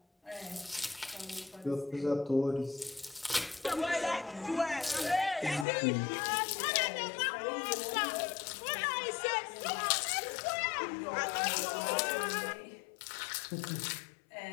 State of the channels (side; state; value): right; drops out; at 5.7 s